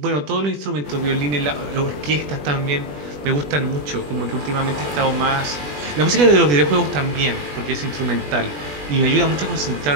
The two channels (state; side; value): late; left; 20 ms